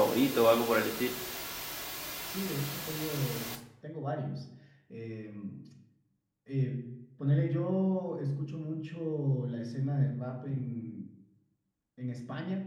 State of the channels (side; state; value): both; identical; correlation 1.00